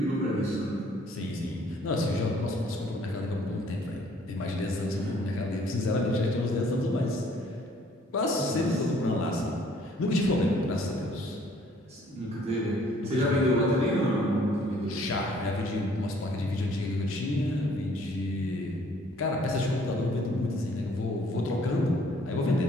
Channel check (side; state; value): both; normal; correlation 0.60